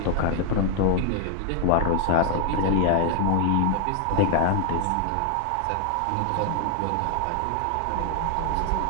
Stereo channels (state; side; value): different; both; correlation 0.00